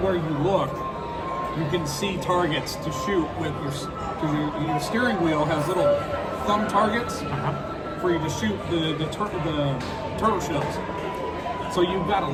you look, you can see targets to shoot with your, because your steering wheel has little thumb targets for you to shoot the turtle shells. So you've got to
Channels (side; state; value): both; identical; correlation 1.00